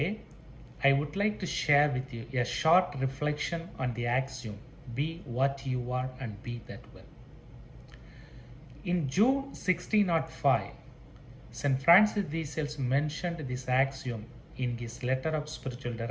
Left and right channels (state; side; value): identical; both; correlation 1.00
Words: I would like to share with you a short reflection on the axiom, be what you are and be that well. In June 1605, St. Francis de Sales mentioned this axiom in his letter of spiritual